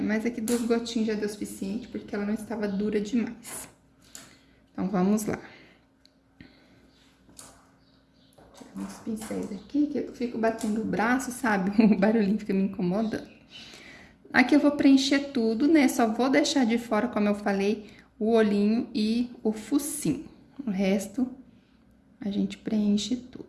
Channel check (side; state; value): both; identical; correlation 1.00